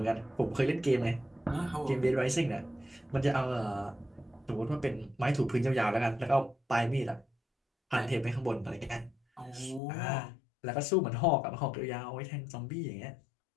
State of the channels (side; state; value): right; drops out; at 9.8 s